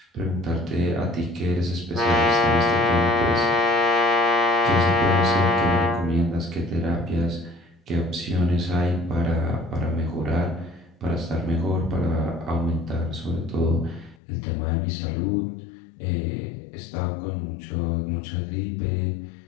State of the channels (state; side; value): drops out; right; at 14.2 s